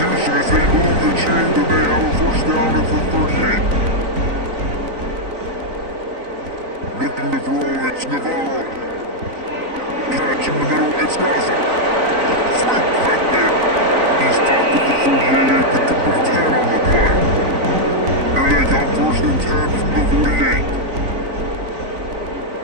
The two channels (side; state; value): left; late; 3.9 ms